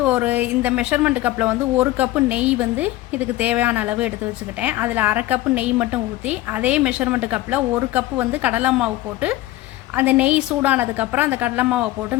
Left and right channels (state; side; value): quieter; right; 16.3 dB